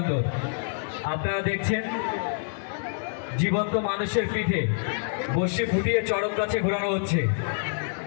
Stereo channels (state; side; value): silent; right; digital silence